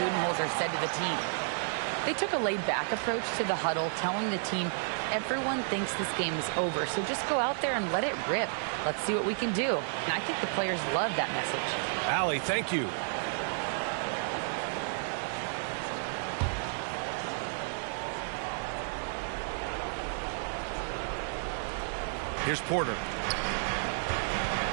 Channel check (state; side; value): silent; left; digital silence